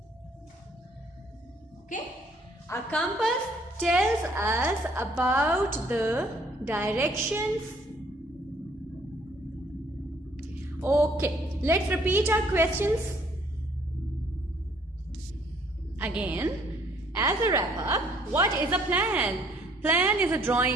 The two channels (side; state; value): both; normal; correlation 0.62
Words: Okay? A compass tells us about the directions. Okay, let's repeat our questions again. As a wrap up, what is a plan? Plan is a